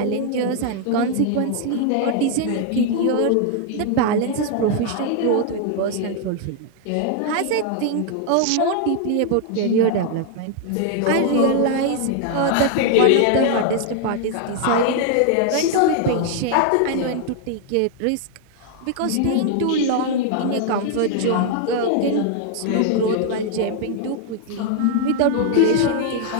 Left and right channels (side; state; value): both; different; correlation 0.00